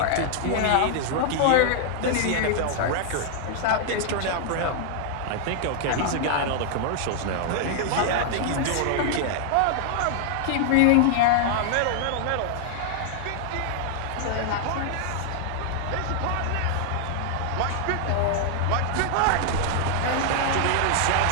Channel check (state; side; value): different; both; correlation 0.00